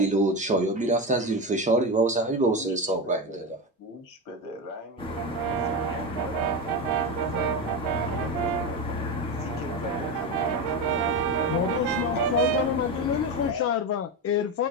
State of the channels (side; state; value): both; normal; correlation 0.17